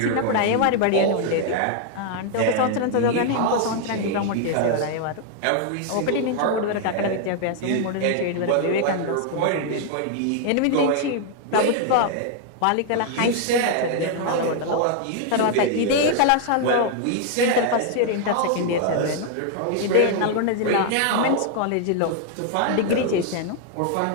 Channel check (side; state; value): both; different; correlation 0.00